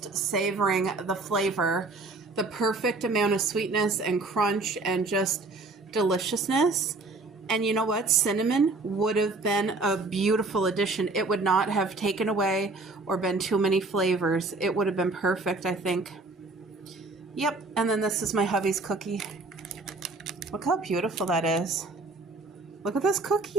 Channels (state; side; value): quieter; left; 3.4 dB